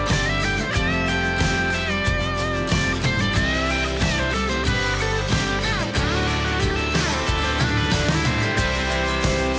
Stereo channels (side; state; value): both; identical; correlation 1.00